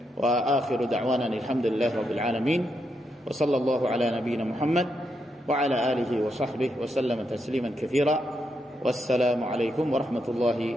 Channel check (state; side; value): normal; both; correlation 0.81